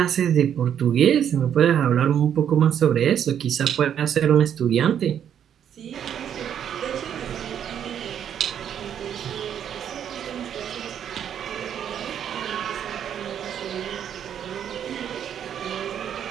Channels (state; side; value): quieter; left; 9.2 dB